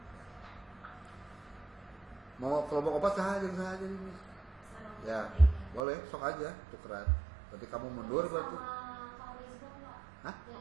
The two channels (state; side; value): drops out; left; at 5.9 s